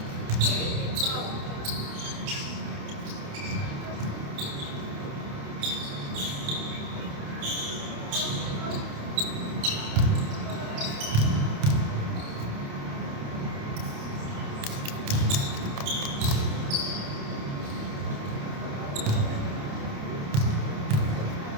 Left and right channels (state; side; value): late; left; 28 ms